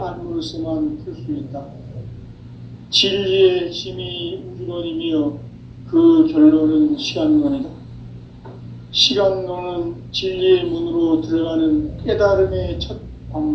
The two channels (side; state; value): both; identical; correlation 1.00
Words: 풀 수 있다. 진리의 핵심이 우주론이며 그 결론은 시간론이다. 시간론은 진리의 문으로 들어가는 깨달음의 첫